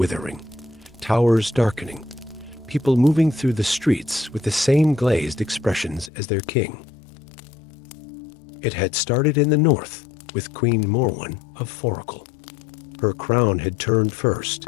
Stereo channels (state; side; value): drops out; right; at 6.1 s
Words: towers darkening, people moving through the streets with the same glazed expressions as their king. It had started in the north with Queen Morwen of Foracle. Her crown had turned